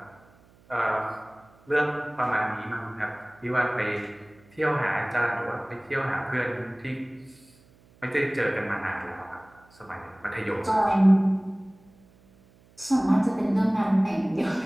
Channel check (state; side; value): noise; right; hum, 29 dB below the sound